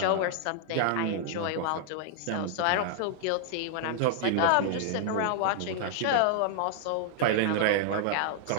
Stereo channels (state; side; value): different; both; correlation 0.00